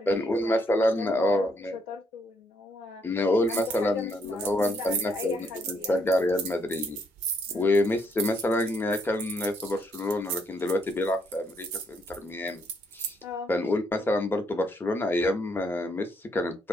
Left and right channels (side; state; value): both; normal; correlation 0.72